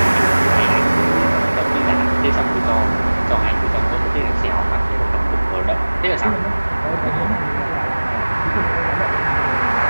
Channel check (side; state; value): both; inverted; correlation -1.00